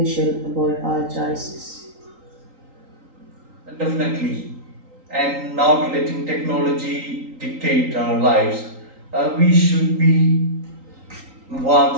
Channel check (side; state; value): left; late; 3.8 ms